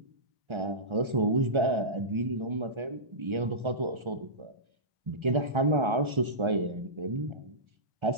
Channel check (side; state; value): left; late; 1.3 ms